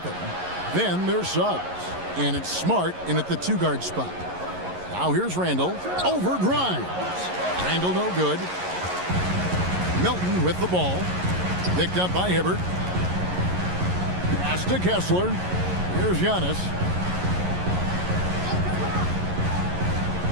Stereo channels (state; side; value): late; left; 11 ms